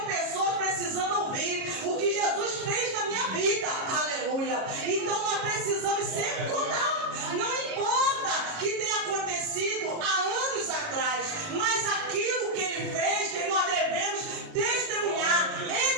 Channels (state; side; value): late; left; 38 ms